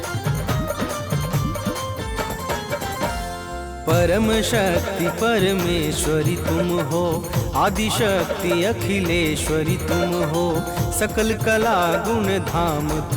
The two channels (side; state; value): both; identical; correlation 1.00